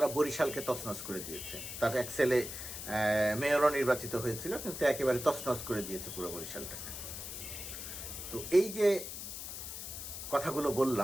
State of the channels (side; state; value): left; noise; hiss, 8 dB below the sound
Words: বরিশালকে তছনছ করে দিয়েছে। তার এক ছেলে মেয়রও নির্বাচিত হয়েছিল, কিন্তু একেবারে তছনছ করে দিয়েছে পুরো বরিশালটাকে। তো এই যে কথাগুলো